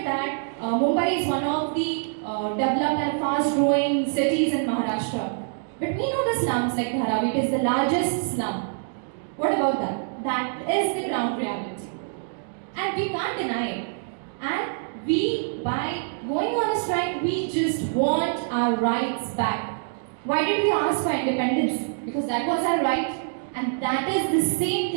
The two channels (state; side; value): silent; left; digital silence